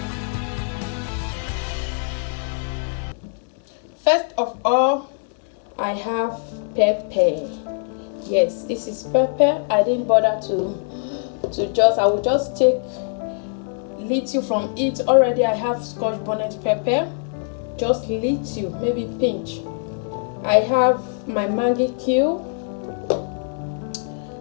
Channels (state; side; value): silent; right; 64 dB below the other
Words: First of all, I have pepper. Yes, this is pepper. I didn't bother I will just take little from it. Already I have scotch bonnet pepper, just little, maybe pinch. I have my Maggi cube.